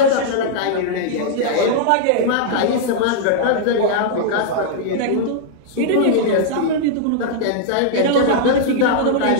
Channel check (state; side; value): different; both; correlation -0.01